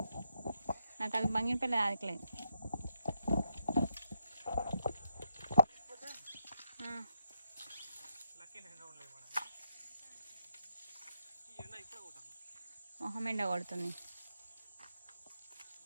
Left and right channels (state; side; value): inverted; both; correlation -0.82